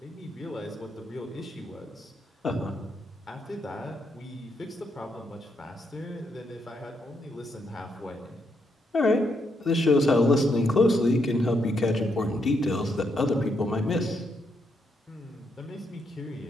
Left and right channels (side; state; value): both; normal; correlation 0.78